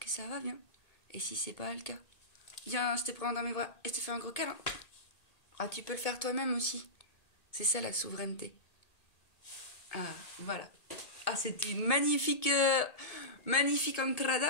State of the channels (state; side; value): late; right; 1.8 ms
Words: ça va bien. Et si c'est pas le cas, viens, je te prends dans mes bras et je te fais un gros câlin. Ah, tu peux le faire toi-même aussi. C'est ça la souveraineté. Ah, voilà. Ah, c'était une magnifique